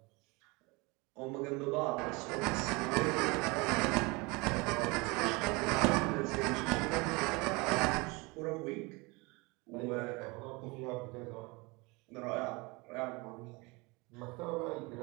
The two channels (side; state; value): left; quieter; 26.1 dB